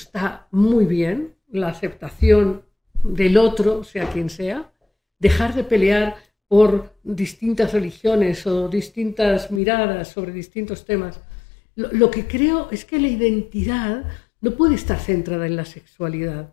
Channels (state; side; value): drops out; right; at 9.6 s